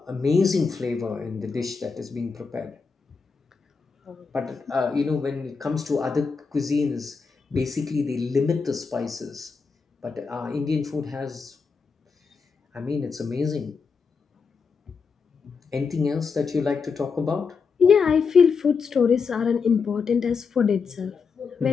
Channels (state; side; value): quieter; right; 5.2 dB